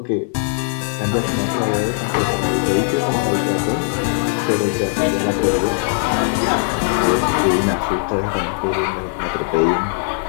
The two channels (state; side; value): silent; right; 66 dB below the other